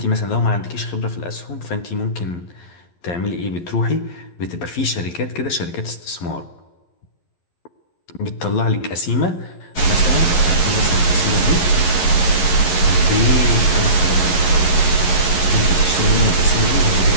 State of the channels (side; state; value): right; late; 11 ms